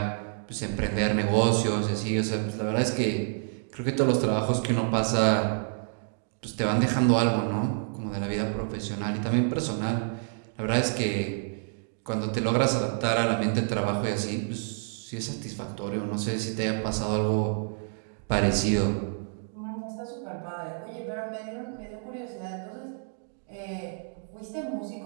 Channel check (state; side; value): silent; left; 59 dB below the other